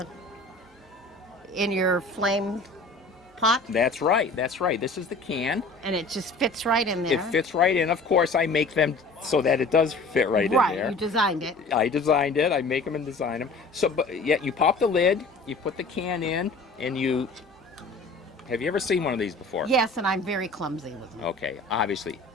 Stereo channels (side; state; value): right; quieter; 3.3 dB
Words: your flame pot, That's right. This is the can. and it just fits right in there. It fits right in. Of course, I make them so that it does fit right in there. You designed it. I designed it. I make them and design them. So, but yeah, you pop the lid, you put the can in, and you. Have you ever seen one of these before? Yes, and I'm very clumsy with them. Okay, obviously,